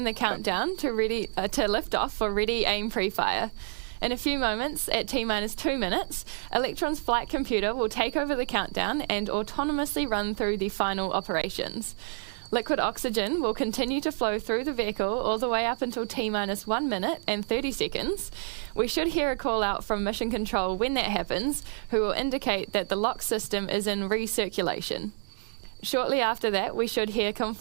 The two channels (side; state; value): left; silent; digital silence